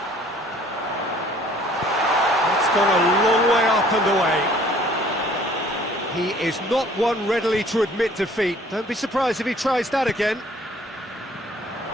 It's gone a long way up and away. He is not one readily to admit defeat. Don't be surprised if he tries that again.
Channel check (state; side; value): normal; both; correlation 0.55